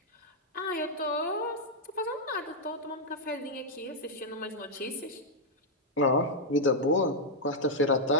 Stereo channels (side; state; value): both; normal; correlation -0.04